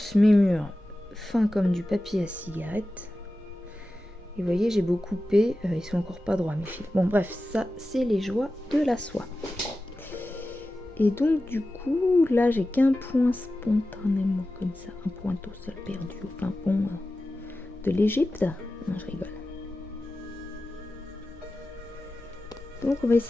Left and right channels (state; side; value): normal; both; correlation 0.94